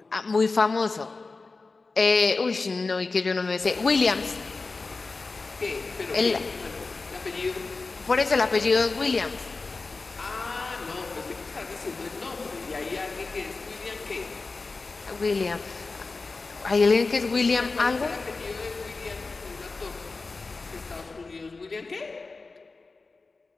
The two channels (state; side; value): quieter; right; 3.9 dB